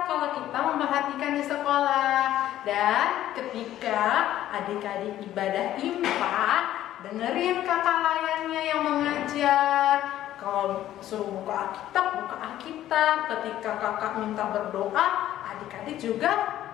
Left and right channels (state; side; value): quieter; right; 12.9 dB